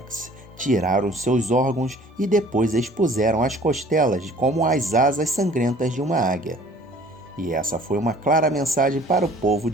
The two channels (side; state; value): both; normal; correlation 0.51